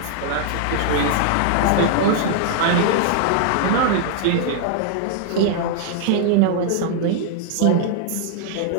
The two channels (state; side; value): different; both; correlation 0.00